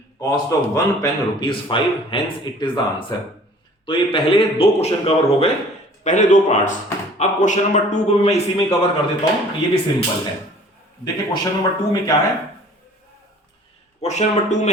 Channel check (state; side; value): normal; both; correlation 0.50